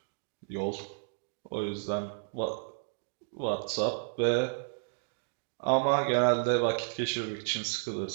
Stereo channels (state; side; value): silent; left; digital silence